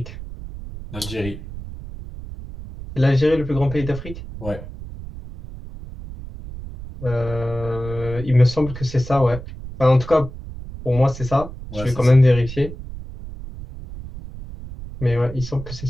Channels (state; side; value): noise; right; rumble, 12 dB below the sound